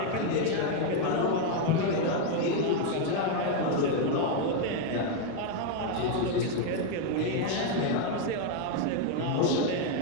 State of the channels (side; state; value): both; different; correlation 0.01